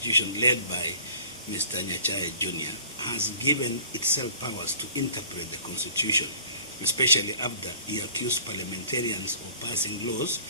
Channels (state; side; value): inverted; both; correlation -0.50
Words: led by Mr. Nyachae Jr., has given itself powers to interpret the constitution, especially after he accused parliamentarians of passing laws